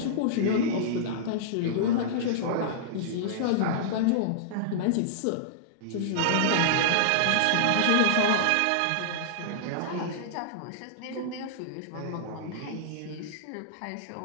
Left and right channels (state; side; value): different; both; correlation -0.02